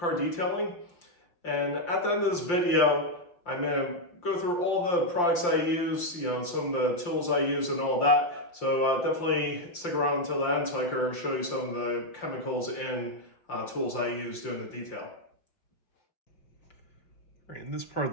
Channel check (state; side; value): late; right; 5.8 ms